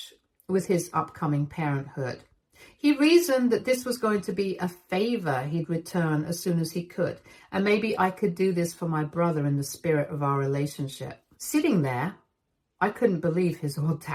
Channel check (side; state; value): both; identical; correlation 1.00